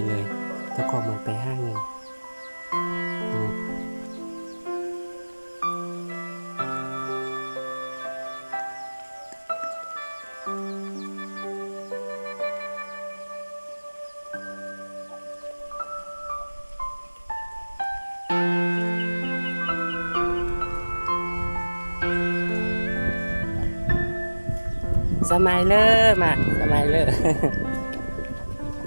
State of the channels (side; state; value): both; inverted; correlation -1.00